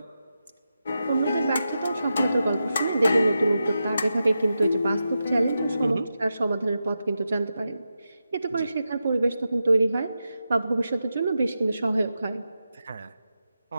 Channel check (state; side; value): inverted; both; correlation -0.89